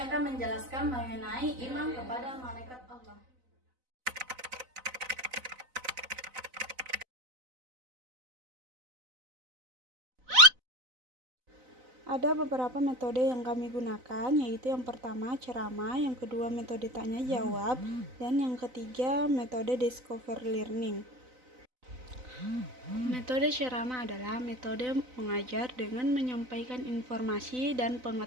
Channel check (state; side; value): late; left; 4.0 ms